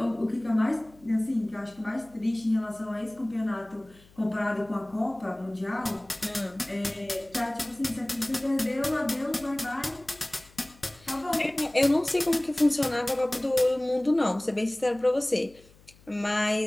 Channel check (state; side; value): noise; left; hum, 27 dB below the sound